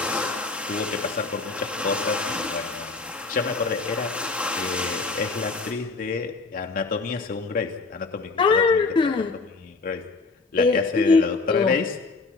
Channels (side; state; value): right; quieter; 3.9 dB